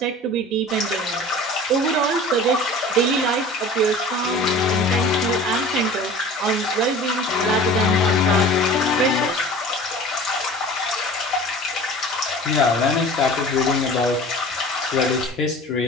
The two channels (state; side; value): normal; both; correlation 0.41